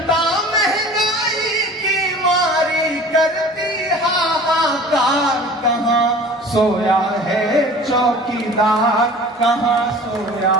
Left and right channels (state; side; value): normal; both; correlation 0.43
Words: करती हाहाकार। कहाँ सोया है चौकीदार, कहाँ सोया